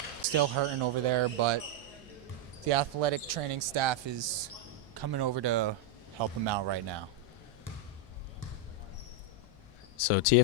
still hurting over there, but the athletic training staff is coming over to help him out right now. So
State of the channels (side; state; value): left; noise; hum, 23 dB below the sound